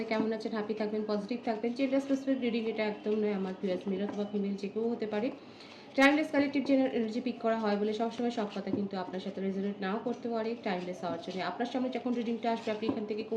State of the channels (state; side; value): identical; both; correlation 1.00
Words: কেমন আছেন? হ্যাপি থাকবেন, পজিটিভ থাকবেন। জেন্ডার স্পেসিফিক রিডিং এটা একদম নয়, আমার ভিউয়ার্স মেল অথবা ফিমেল যে কেউ হতে পারে। Timeless collective general energy pick করা হয় বলে সবসময় সব কথা কিন্তু আপনার সাথে রেজোনেট নাও করতে পারে। টাইমলেস হওয়ার জন্য আপনার সামনে যখন রিডিংটা আসবে আপনি এখান থেকে